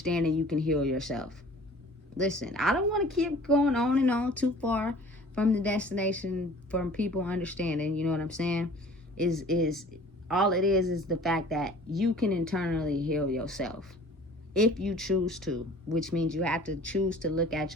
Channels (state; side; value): normal; both; correlation 0.48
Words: you can heal yourself. Listen, I don't want to keep going on and on too far from the destination, from people understanding, you know what I'm saying? Is all it is the fact that you can internally heal yourself if you choose to, which means you have to choose to look at